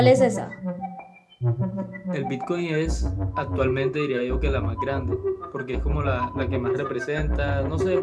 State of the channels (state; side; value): identical; both; correlation 1.00